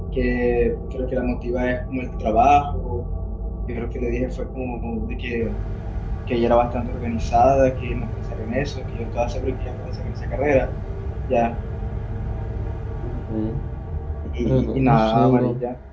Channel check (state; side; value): identical; both; correlation 1.00